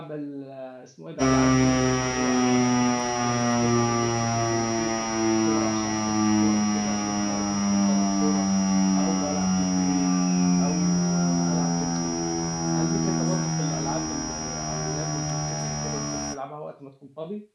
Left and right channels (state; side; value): identical; both; correlation 1.00